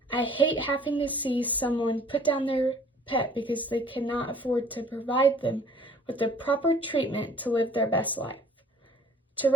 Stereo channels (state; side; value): normal; both; correlation 0.53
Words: I hate having to see someone put down their pet because they cannot afford to provide them with the proper treatment to live their best life. To